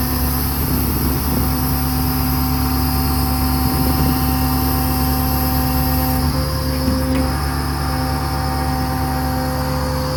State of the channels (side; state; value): both; identical; correlation 1.00